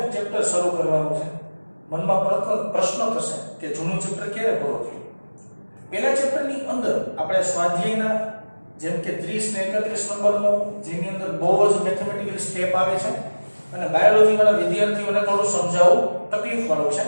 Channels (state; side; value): inverted; both; correlation -1.00